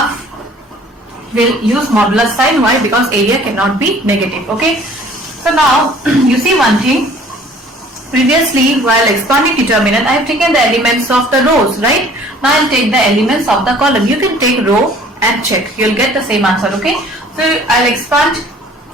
will use modulus sign. Why? Because area cannot be negative. Okay. So now you see one thing. Previously, while expanding determinant, I have taken the elements of the rows, right? Now I'll take the elements of the column. You can take row and check. You'll get the same answer. Okay. So I'll expand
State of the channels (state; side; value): normal; both; correlation 0.52